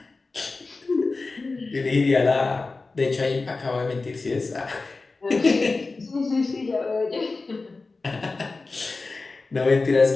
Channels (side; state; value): right; quieter; 3.7 dB